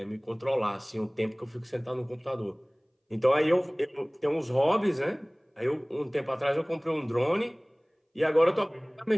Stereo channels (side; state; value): both; identical; correlation 1.00